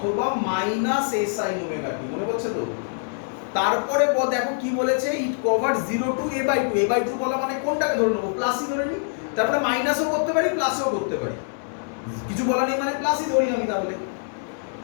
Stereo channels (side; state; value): right; silent; 62 dB below the other